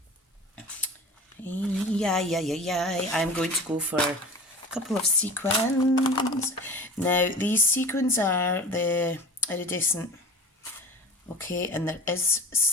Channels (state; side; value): normal; both; correlation 0.37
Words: Yeah. I'm going to go for a couple of sequins. Now, these sequins are the iridescent. Okay, and there is